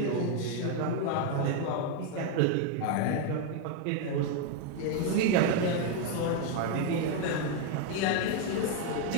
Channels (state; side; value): different; both; correlation 0.01